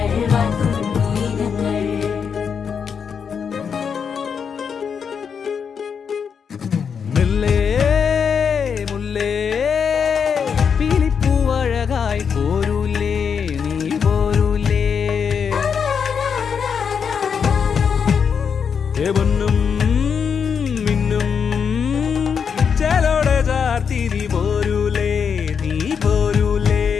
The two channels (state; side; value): quieter; right; 6.7 dB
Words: വാഴ്ത്തുന്നു ഇനങ്ങൾ മുല്ലേ മുല്ലേ പീലിപ്പൂവഴകായി പോരൂലേ നീ പോരൂലേ പൊന്നും മിന്നും ചേലോടെ ചാർത്തിരി പോരൂലേ നീ പോരൂലേ